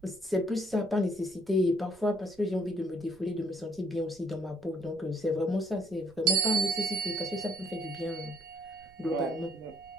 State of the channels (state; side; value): noise; right; rumble, 27 dB below the sound